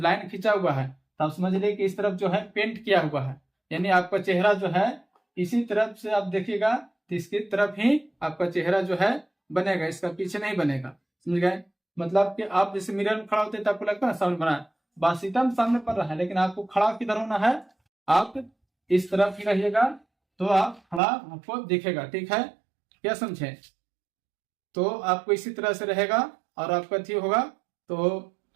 लाइन खींचा हुआ है तो आप समझ लीजिए कि इस तरफ जो है पेंट किया हुआ है, यानी आपका चेहरा जो है इसी तरफ से आप देखिएगा तो इसकी तरफ ही आपका चेहरा जो है बनेगा, इसका पीछे नहीं बनेगा। समझ गए? मतलब कि आप जैसे मिरर में खड़ा होते तो आपको लगता है सामने बना है, बासीतम सामने पड़ रहा है, लेकिन आपको खड़ा किधर होना है, आप इस तरफ ही रहिएगा तो आप खड़ा आपको दिखेगा। ठीक है, क्या समझे? तो आपको इसी तरह से रहेगा और आपका ठीक होगा तो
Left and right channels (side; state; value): left; drops out; at 21.0 s